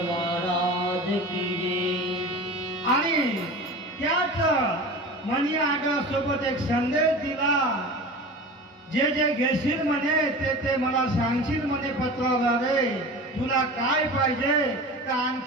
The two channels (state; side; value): normal; both; correlation 0.34